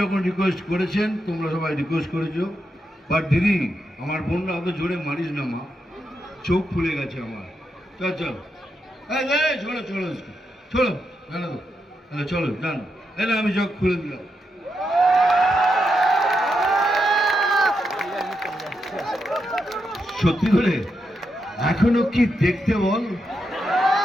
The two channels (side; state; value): both; normal; correlation 0.84